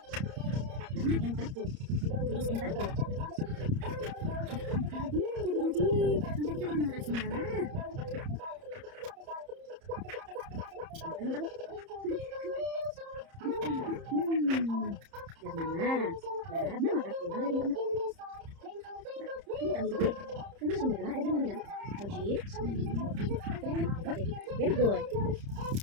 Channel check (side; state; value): left; late; 30 ms